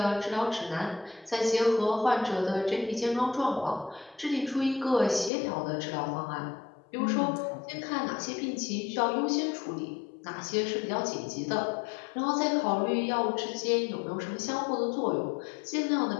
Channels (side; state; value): right; drops out; at 5.3 s